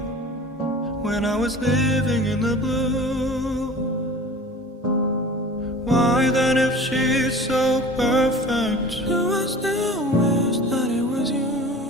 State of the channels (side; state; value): both; normal; correlation 0.42